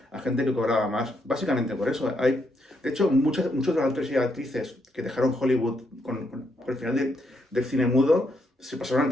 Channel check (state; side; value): normal; both; correlation 0.77